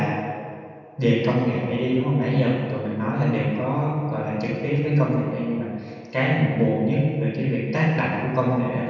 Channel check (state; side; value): identical; both; correlation 1.00